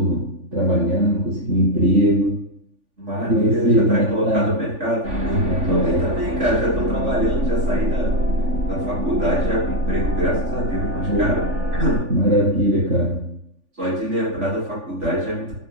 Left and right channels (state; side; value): late; left; 3.5 ms